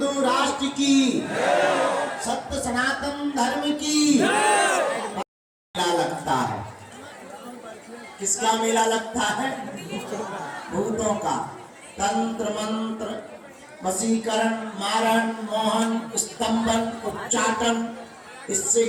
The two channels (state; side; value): identical; both; correlation 1.00